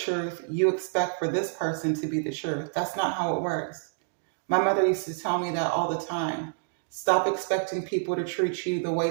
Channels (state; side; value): silent; left; digital silence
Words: you expect for this person to be the truth. That's not how it works. My mother used to tell me that all the time. Stop expecting people to treat you the